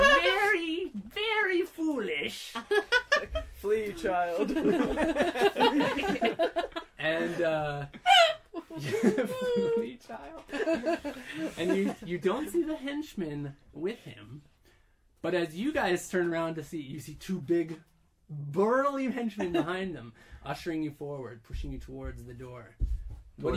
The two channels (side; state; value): both; identical; correlation 1.00